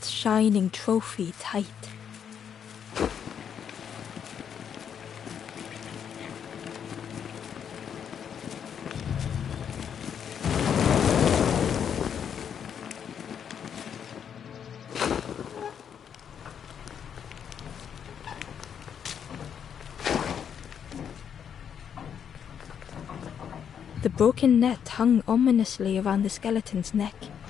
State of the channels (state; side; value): quieter; right; 8.1 dB